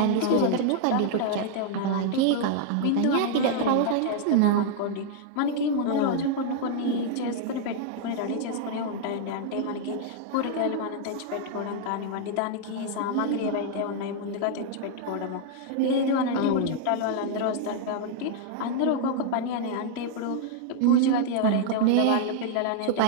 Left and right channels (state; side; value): different; both; correlation -0.01